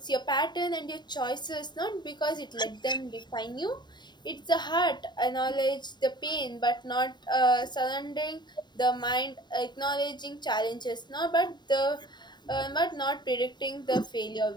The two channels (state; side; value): late; right; 0.21 ms